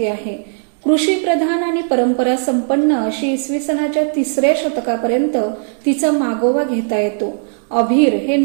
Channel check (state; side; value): silent; left; 68 dB below the other